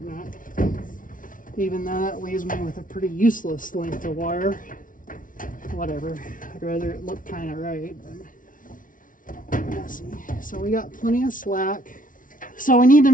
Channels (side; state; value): right; late; 0.38 ms